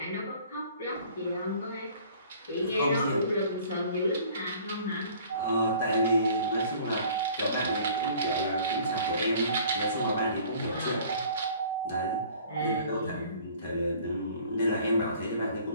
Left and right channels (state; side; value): inverted; both; correlation -0.51